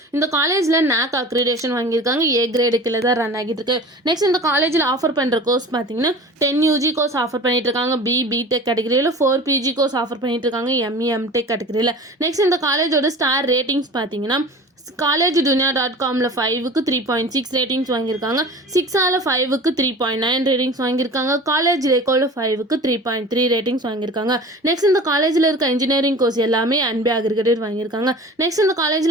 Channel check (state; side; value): normal; both; correlation 0.39